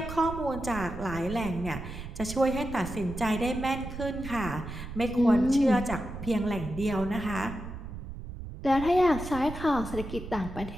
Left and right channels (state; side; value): noise; right; rumble, 10 dB below the sound